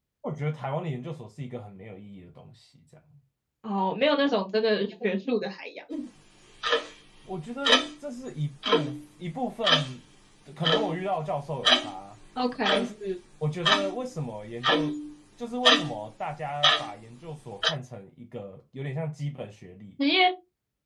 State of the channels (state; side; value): identical; both; correlation 1.00